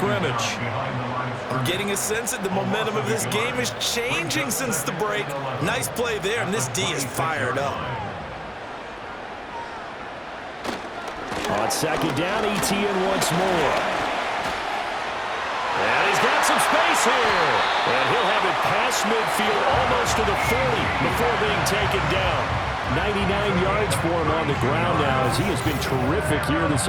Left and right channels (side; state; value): both; identical; correlation 1.00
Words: I'm getting a sense that the momentum of this game is changing since the break. Nice play there, and this D is fired up. On 2nd down, Etienne once more. And he's got some space here. And he'll have it past midfield almost to the 40 before being taken down. 99 yards for him on the ground now as he has been terrific here this